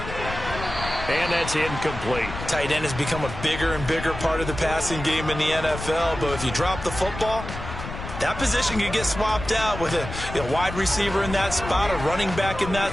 And that's incomplete. Tight end has become a bigger and bigger part of the passing game in the NFL, but if you drop the football, that position can get swapped out with a wide receiver in that spot, a running back in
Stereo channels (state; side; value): noise; left; rumble, 9 dB below the sound